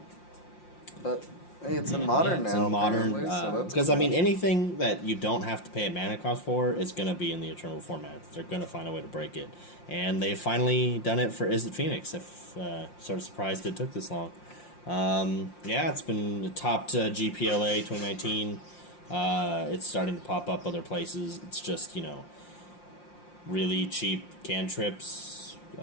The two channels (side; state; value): right; late; 5.7 ms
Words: hey, it's in Modern now. It's in Modern. Because, cool. I mean, anything that you don't have to pay a mana cost for is going to be in the Eternal format. They're going to find a way to break it. And they've finally done it for Is It Phoenix. Sort of surprised it took this long. Yeah, it's been topped GPLA 2019. It's starting to pop up other places. It's just, really cheap cantrips.